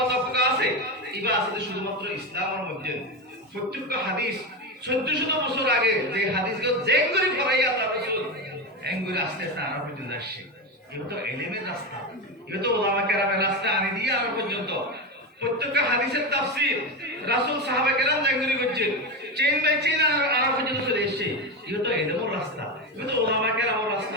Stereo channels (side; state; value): both; normal; correlation 0.16